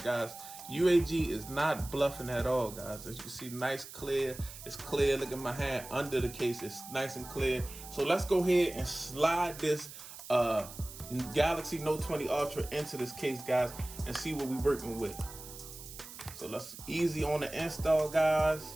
guys, UAG is not bluffing at all, guys. As you can see, nice clear. It's clear. Look at my hand under the case. It's nice and clear. So let's go ahead and slide this Galaxy Note 20 Ultra into this case, guys, and see what we're working with. So let's easy on the install, guys.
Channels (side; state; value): right; noise; hiss, 14 dB below the sound